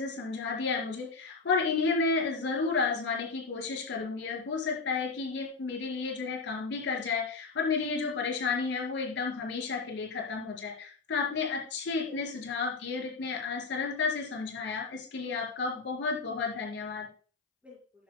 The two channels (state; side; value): quieter; right; 4.3 dB